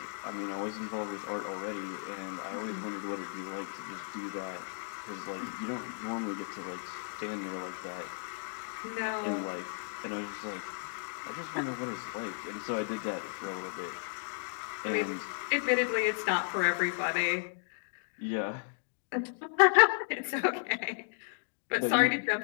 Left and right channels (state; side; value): silent; right; digital silence